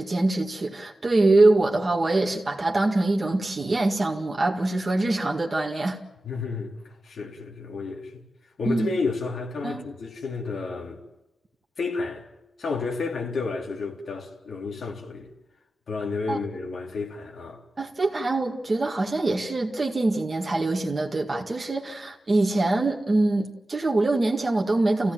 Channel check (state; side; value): normal; both; correlation 0.94